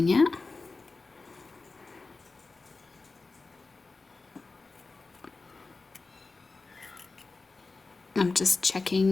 it. I'm just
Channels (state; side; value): quieter; right; 3.8 dB